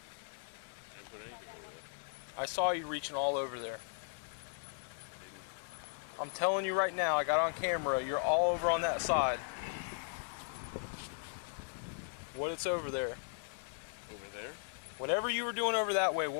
didn't put anything over there. I saw you reaching all over there. I'm telling you right now, I got on camera, you're all over on that side. What it's over there? Over there? Whatever you were doing over that way,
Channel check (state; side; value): silent; right; 53 dB below the other